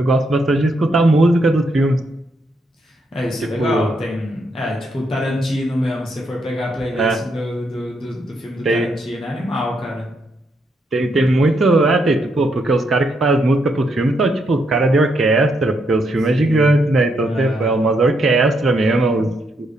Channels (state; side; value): normal; both; correlation 0.77